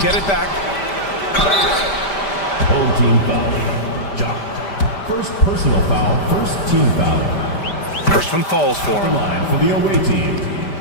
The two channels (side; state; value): right; late; 5.1 ms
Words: it back. Home team foul. Jock. First personal foul, first team foul. First one falls for him. Line for the away team.